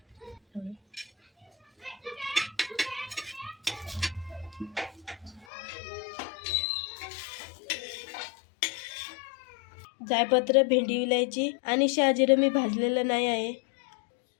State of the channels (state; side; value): drops out; right; at 5.5 s